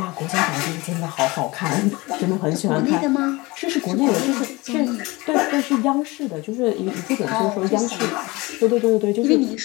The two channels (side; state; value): right; quieter; 23.0 dB